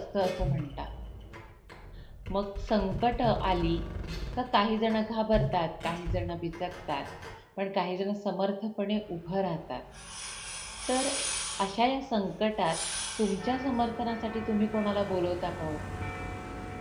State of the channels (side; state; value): both; identical; correlation 1.00